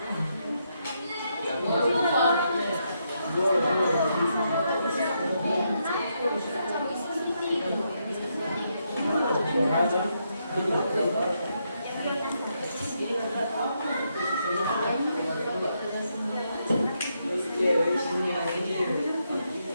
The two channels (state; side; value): inverted; both; correlation -0.79